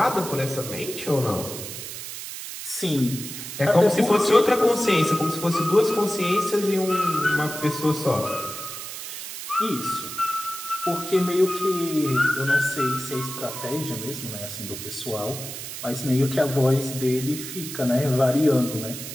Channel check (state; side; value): noise; right; hiss, 9 dB below the sound